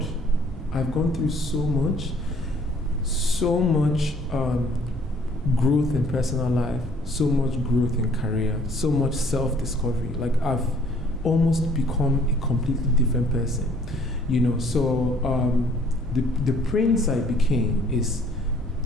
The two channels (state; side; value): normal; both; correlation 0.58